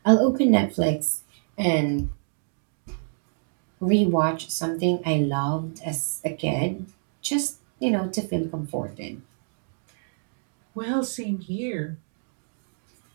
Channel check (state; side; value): silent; left; digital silence